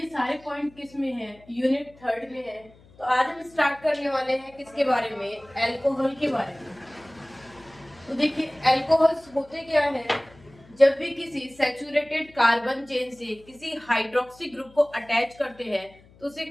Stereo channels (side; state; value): left; noise; hum, 26 dB below the sound